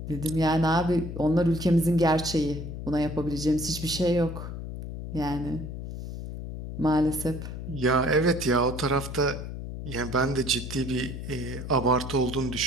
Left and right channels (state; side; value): noise; left; hum, 8 dB below the sound